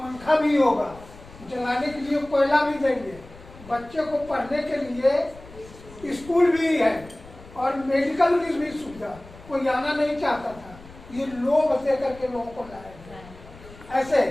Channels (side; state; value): left; noise; rumble, 19 dB below the sound